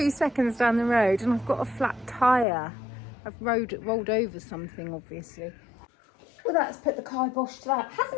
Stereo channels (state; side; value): drops out; right; at 2.5 s